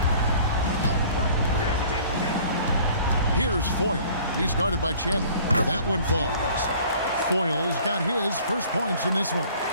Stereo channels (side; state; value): both; inverted; correlation -0.51